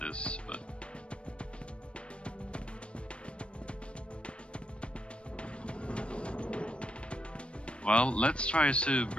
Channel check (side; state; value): right; late; 0.059 ms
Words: but well, let's try to